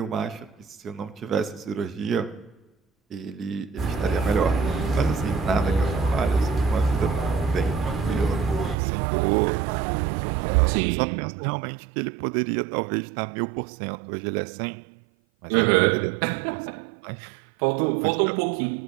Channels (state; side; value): drops out; left; at 8.8 s